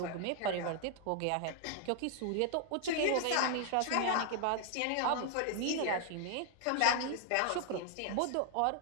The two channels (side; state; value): both; different; correlation 0.00